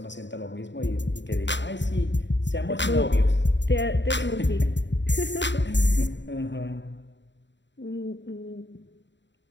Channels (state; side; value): late; right; 0.52 ms